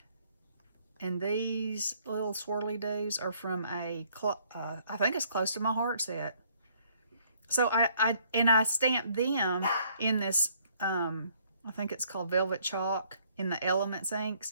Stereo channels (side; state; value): both; inverted; correlation -0.64